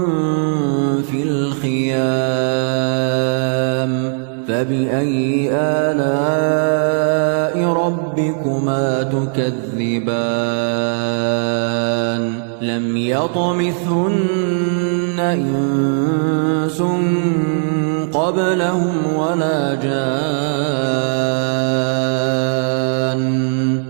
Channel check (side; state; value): left; silent; digital silence